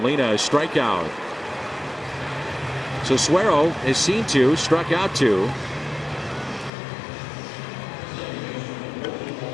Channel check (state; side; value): drops out; right; at 6.7 s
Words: a strikeout. So Suero has seen 2, struck out 2.